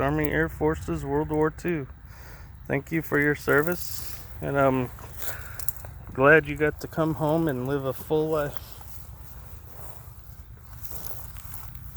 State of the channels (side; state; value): both; identical; correlation 1.00